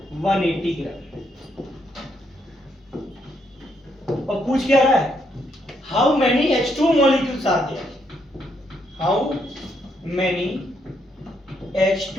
180 gram. और पूछ क्या रहा है? How many H2 molecules are there? How many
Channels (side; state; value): both; normal; correlation 0.75